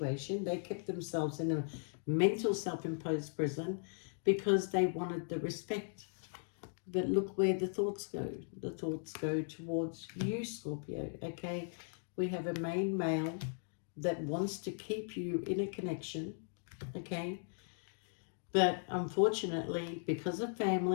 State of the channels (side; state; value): right; silent; digital silence